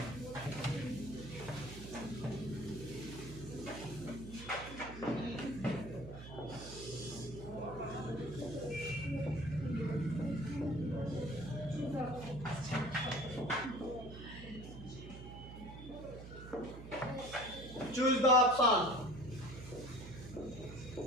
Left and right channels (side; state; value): right; noise; hum, 12 dB below the sound